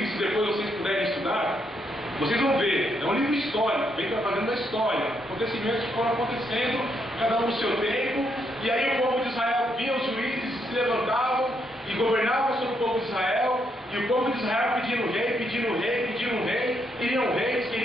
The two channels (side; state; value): both; normal; correlation 0.77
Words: se depois vocês puderem estudar, vocês vão ver, é um livro histórico, vem trazendo a história, acontecimentos que foram acontecendo, cada um no seu tempo, e aí o povo de Israel via os juízes, se levantavam e governavam sobre o povo de Israel, e o povo de Israel pedindo rei, pedindo rei, pedindo rei, queriam reis,